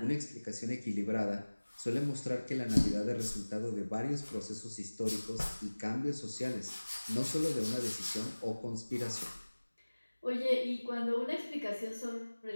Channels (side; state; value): both; inverted; correlation -1.00